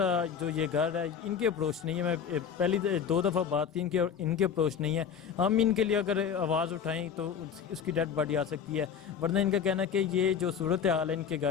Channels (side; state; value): right; quieter; 7.4 dB